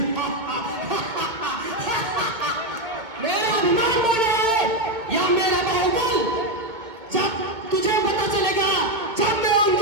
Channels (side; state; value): left; late; 2.2 ms